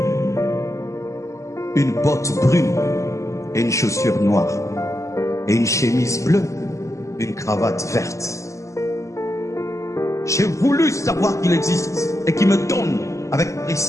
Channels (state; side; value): late; right; 0.15 ms